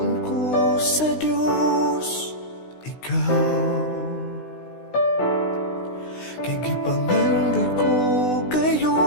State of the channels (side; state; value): right; late; 16 ms